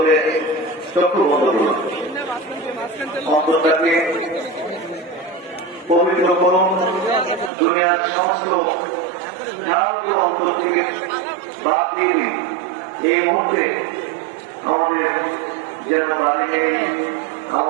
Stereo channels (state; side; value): drops out; left; at 7.5 s